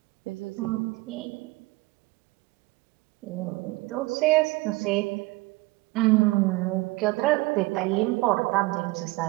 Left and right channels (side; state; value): left; quieter; 22.1 dB